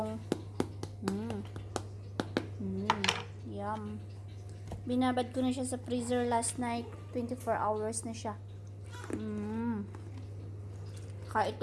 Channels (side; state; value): both; identical; correlation 1.00